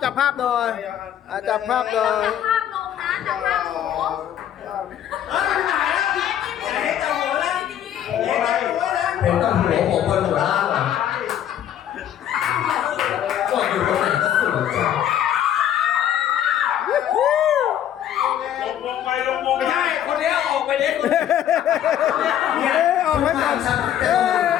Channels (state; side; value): quieter; right; 10.6 dB